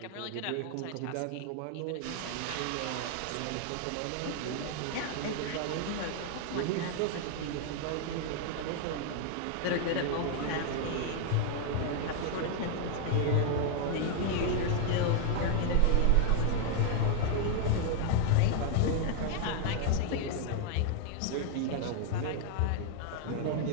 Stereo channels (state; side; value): different; both; correlation 0.00